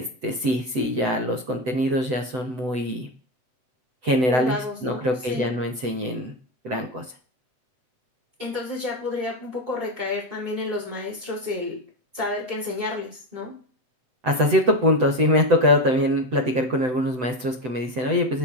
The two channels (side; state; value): left; late; 7.9 ms